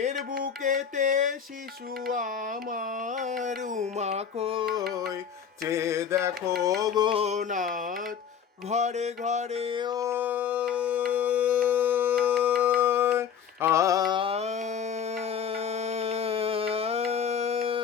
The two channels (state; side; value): quieter; right; 7.6 dB